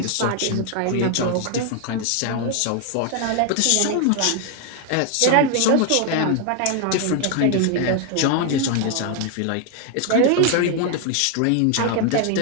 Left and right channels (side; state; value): both; different; correlation 0.00